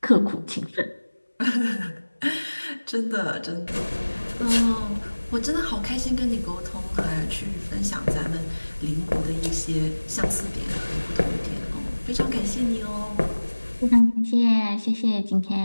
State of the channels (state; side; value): inverted; both; correlation -1.00